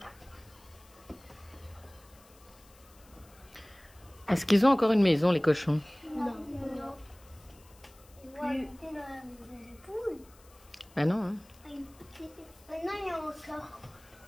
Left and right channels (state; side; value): noise; left; hiss, 26 dB below the sound